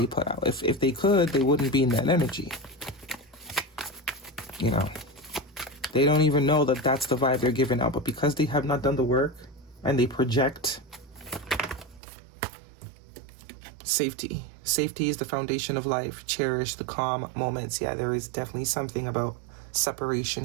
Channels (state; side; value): drops out; left; at 12.0 s